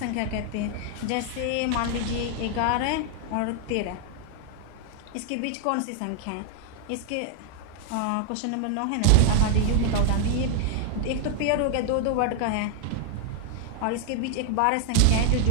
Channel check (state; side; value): different; both; correlation 0.00